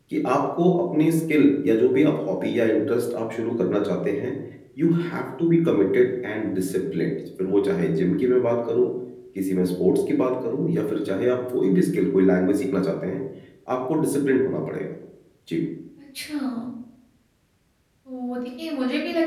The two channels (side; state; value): both; identical; correlation 1.00